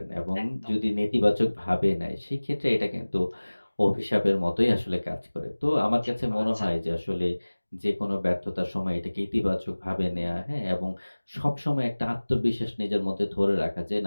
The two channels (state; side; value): inverted; both; correlation -1.00